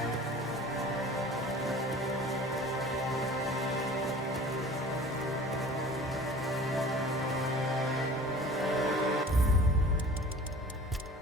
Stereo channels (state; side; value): normal; both; correlation 0.43